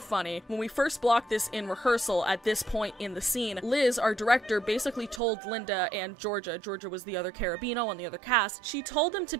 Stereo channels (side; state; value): left; drops out; at 5.2 s